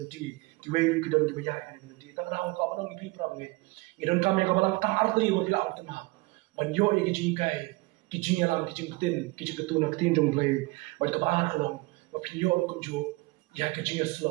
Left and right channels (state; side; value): quieter; left; 23.2 dB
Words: ki wei ki don ki bayar kan belenti tang ra ko ba ngi phi pram nge ngi don kam ya ka balang tar arti bo pila arti ma ban yo ki ji kai ki ji alam ki jing tin ki ji ketu na tin jong play ba ka ba khalong ba phi yo kum jo ya ki ji